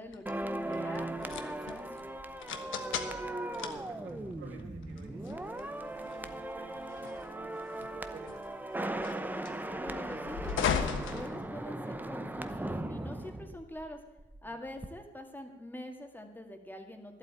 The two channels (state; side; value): normal; both; correlation 0.60